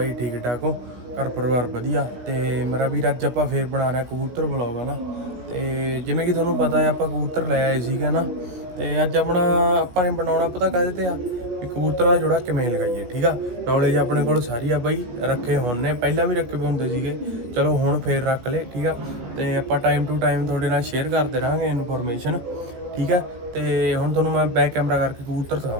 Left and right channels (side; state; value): left; late; 17 ms